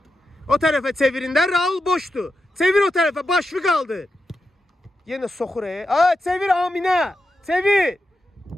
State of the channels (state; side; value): normal; both; correlation 0.89